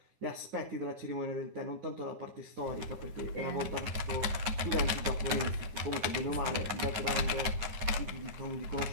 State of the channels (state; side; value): late; left; 9.6 ms